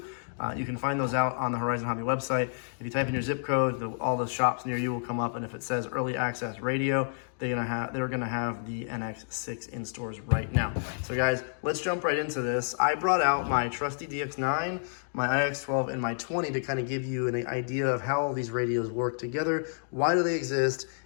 You can find those out on the Horizon Hobby website. If you type in your zip code, all the shops near you will come up, and if it says early access radio, they're gonna have the NX6 in stores right now. So guys, let's jump right into this. I brought out my trusty DX9, my IX12, and my 20 to kind of give you an idea of how all these radios work together, why do they exist,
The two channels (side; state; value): right; silent; digital silence